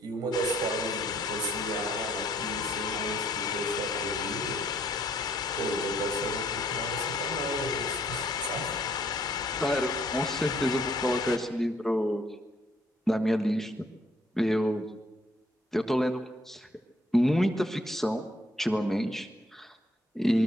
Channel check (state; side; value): normal; both; correlation 0.65